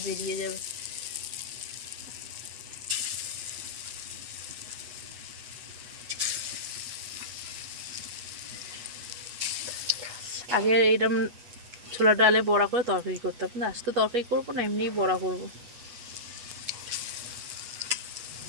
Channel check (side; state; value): left; late; 8.2 ms